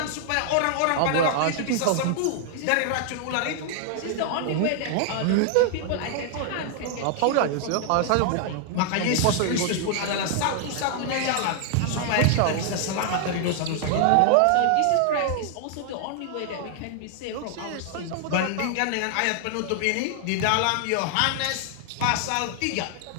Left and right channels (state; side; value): different; both; correlation 0.00